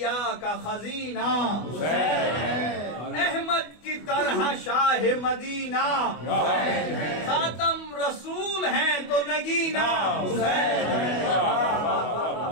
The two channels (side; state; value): right; late; 24 ms